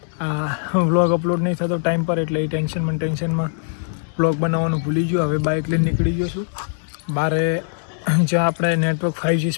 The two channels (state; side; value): silent; right; digital silence